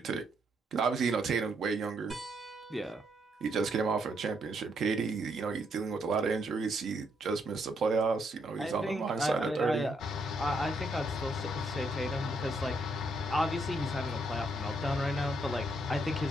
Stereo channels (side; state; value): both; normal; correlation 0.75